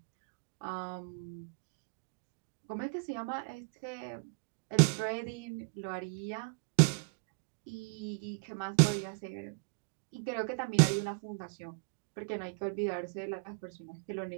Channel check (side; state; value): left; quieter; 39.7 dB